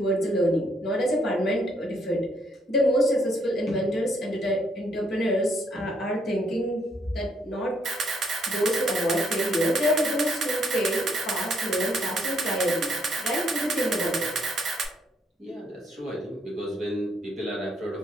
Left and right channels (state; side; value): normal; both; correlation 0.71